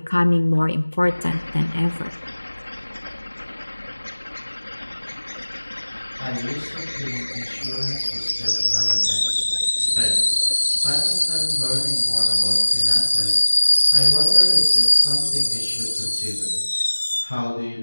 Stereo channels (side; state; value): both; inverted; correlation -1.00